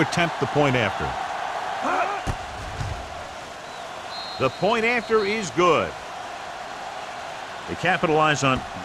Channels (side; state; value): both; identical; correlation 1.00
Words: the point after. The point after is good. They capitalize on